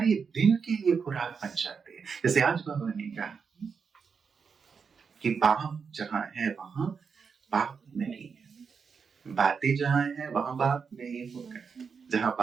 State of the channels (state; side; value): quieter; left; 5.9 dB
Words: दिन के लिए खुराक बन जाती है। जैसे आज बाबा ने कहा कि बाप जहां है वहां बाप नहीं है, बातें जहां है वहां बाप नहीं होगा, जहां